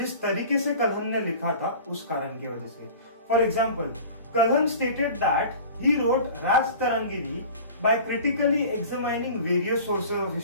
तरीके से कल्हन ने लिखा था उस कारण की वजह से। For example, Kalhana stated that he wrote Rajatarangini by critically examining various sources of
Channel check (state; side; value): inverted; both; correlation -0.40